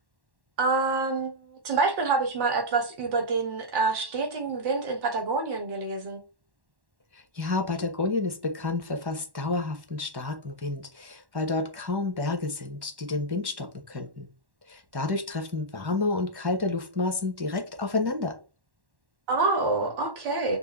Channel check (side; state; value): left; late; 1.1 ms